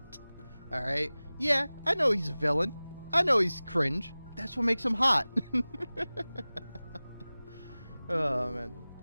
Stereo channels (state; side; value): inverted; both; correlation -0.98